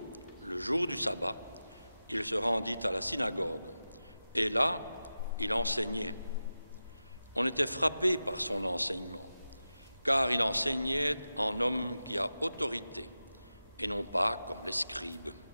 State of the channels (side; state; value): both; inverted; correlation -0.93